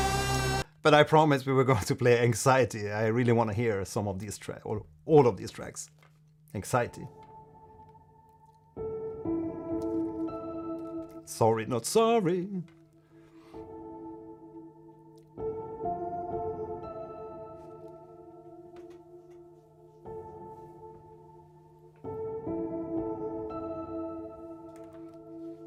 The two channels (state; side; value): identical; both; correlation 1.00